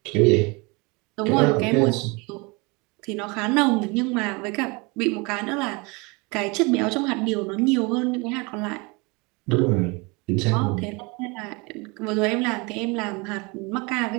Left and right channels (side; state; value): left; quieter; 27.9 dB